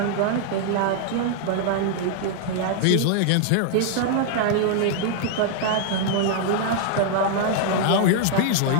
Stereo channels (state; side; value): different; both; correlation -0.01